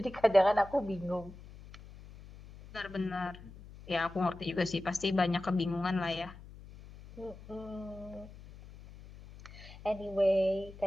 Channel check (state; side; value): noise; left; hum, 17 dB below the sound